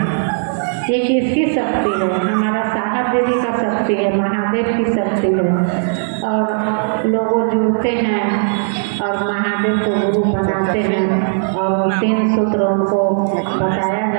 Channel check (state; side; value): silent; left; 65 dB below the other